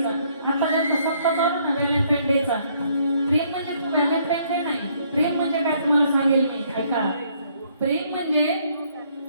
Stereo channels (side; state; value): both; inverted; correlation -0.67